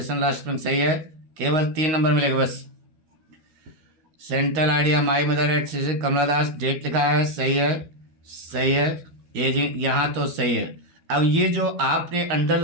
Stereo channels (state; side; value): late; left; 12 ms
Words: last spring, सही है, केवल 3 नंबर मिलेगा बस। Central idea my mother at Shri Kamala Das, date लिखा है, सही है, सही है, ये जी यहाँ तो सही है। अब ये जो आपने